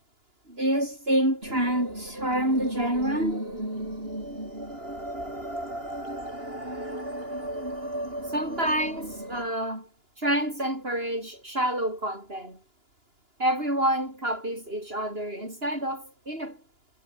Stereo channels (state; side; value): late; left; 2.9 ms